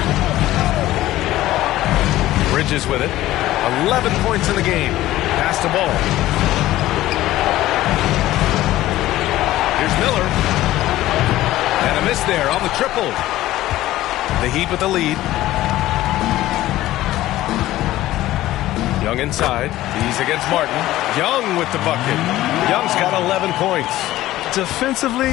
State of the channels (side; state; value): right; quieter; 15.4 dB